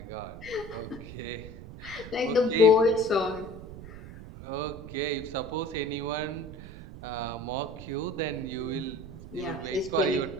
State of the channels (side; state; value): right; noise; rumble, 13 dB below the sound